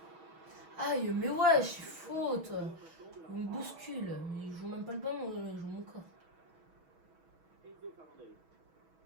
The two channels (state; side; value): late; left; 6.2 ms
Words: Aïe, mais ouais, je suis faute. Il me bouscule. Il joue même pas le ballon, il joue mon corps. Enzo Fernandez.